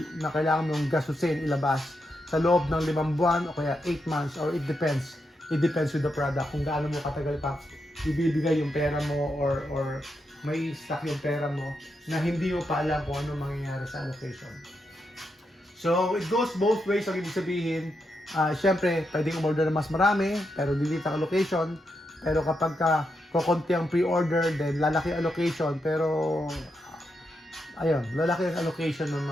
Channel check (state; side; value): normal; both; correlation 0.84